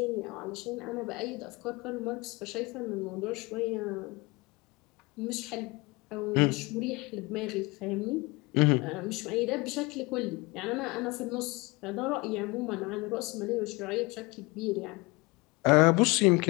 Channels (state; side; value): quieter; right; 25.0 dB